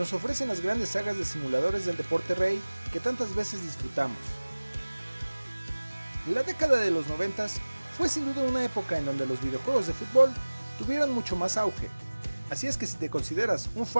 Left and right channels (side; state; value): both; inverted; correlation -1.00